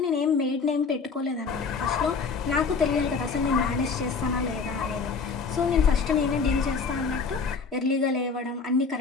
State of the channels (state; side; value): quieter; right; 4.9 dB